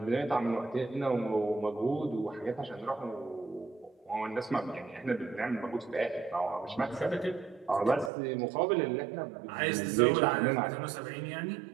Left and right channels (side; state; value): left; drops out; at 8.1 s